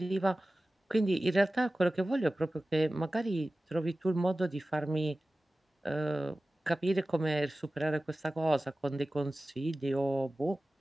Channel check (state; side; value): normal; both; correlation 0.96